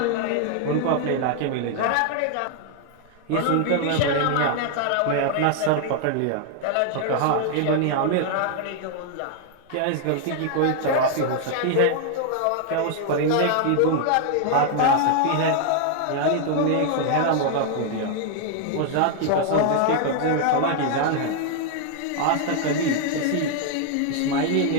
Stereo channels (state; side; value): different; both; correlation 0.00